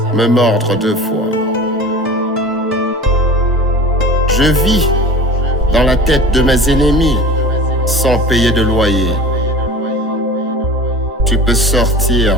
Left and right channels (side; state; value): both; normal; correlation 0.38